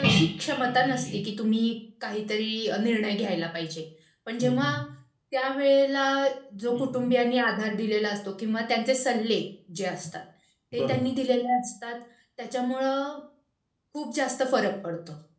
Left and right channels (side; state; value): both; identical; correlation 1.00